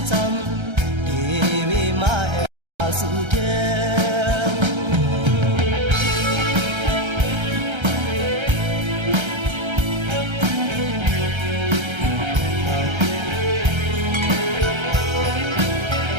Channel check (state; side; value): late; left; 1.3 ms